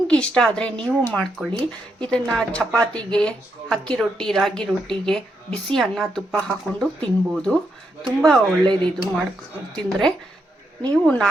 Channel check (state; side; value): normal; both; correlation 0.80